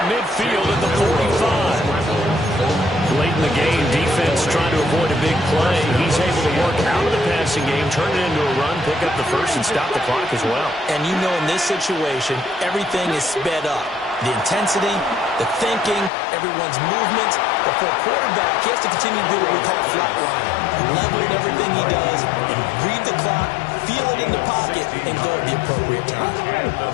midfield at the 45. Late in the game, defense trying to avoid a big play. He's able to work out of the passing game, turn it into a run, pick up the first, and stop the clock as well. And you know in this situation, everything is sped up. The intensity, the thinking, everyone's movement. But for a quarterback, he has to continue to do what we call flatlining. Level in everything he does, and read the clock, feel it in the pocket, and go at the appropriate time.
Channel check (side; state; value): right; drops out; at 16.1 s